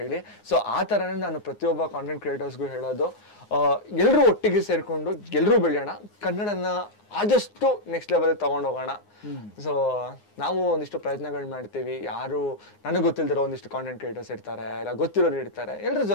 ಸೊ ಆ ತರನೇ ನಾನು ಪ್ರತಿಯೊಬ್ಬ ಕಾಂಟೆಂಟ್ ಕ್ರಿಯೇಟರ್ಸ್ಗೂ ಹೇಳೋದು, ಎಲ್ಲರೂ ಒಟ್ಟಿಗೆ ಸೇರ್ಕೊಂಡು ಎಲ್ಲರೂ ಬೆಳೆಯೋಣ, ಕನ್ನಡನ ಆದಷ್ಟು ನೆಕ್ಸ್ಟ್ ಲೆವೆಲ್ ತಗೊಂಡೋಗೋಣ. ಸೊ ನಾವು ಒಂದಿಷ್ಟು ಪ್ರಯತ್ನಗಳು ಮಾಡ್ತೀವಿ. ಯಾರು ನನಗೆ ಗೊತ್ತಿಲ್ದಿರೋ ಒಂದಿಷ್ಟು ಕಾಂಟೆಂಟ್ ಕ್ರಿಯೇಟರ್ಸ್ ಇರ್ತಾರೆ, ಇಲ್ಲ ಗೊತ್ತಿರೋರು ಇರ್ತಾರೆ, ಎಲ್ಲರ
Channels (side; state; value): right; late; 9.6 ms